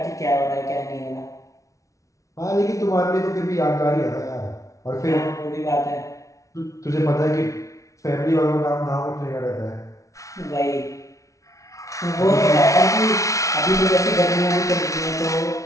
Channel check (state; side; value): late; right; 0.16 ms